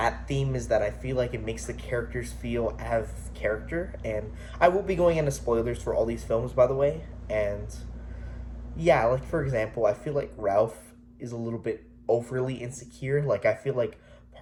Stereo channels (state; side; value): identical; both; correlation 1.00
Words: theme is that I feel like it makes the characters feel out of character, and I will be going into spoilers for all these films, by the way, and yeah, like for example, I feel like Ralph is a little bit overly insecure. Like I feel like